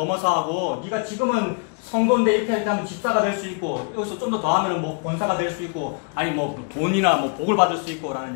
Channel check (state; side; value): quieter; right; 35.4 dB